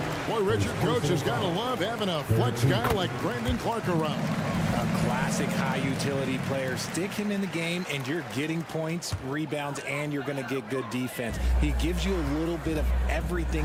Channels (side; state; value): both; identical; correlation 1.00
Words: Boy, Richard, coach has got to love having a flex guy like Brandon Clark around. A classic high-utility player. Stick him in the game, and you're getting points, rebounds, and you're going to get good defense. He gives you a little bit of everything